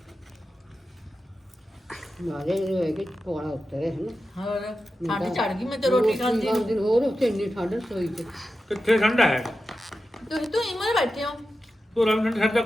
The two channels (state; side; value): normal; both; correlation 0.92